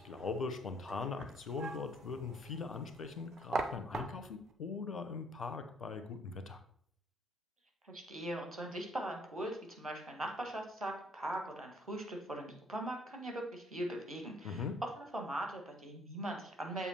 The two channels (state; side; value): normal; both; correlation 0.63